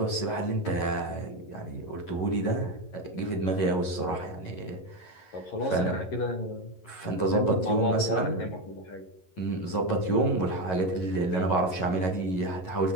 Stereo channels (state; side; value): late; right; 11 ms